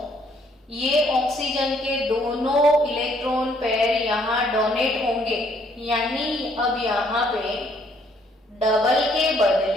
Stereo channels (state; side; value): normal; both; correlation 0.66